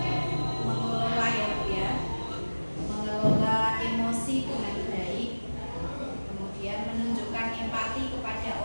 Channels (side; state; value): both; inverted; correlation -1.00